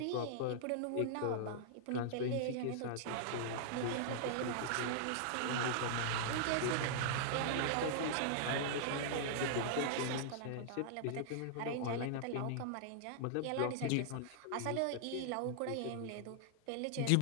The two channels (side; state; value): both; different; correlation -0.01